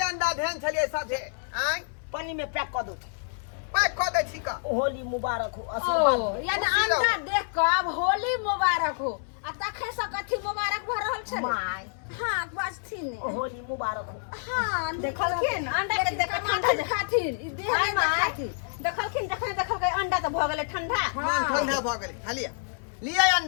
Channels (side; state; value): right; silent; 58 dB below the other